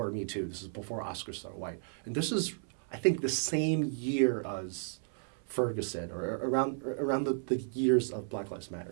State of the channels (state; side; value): silent; left; 55 dB below the other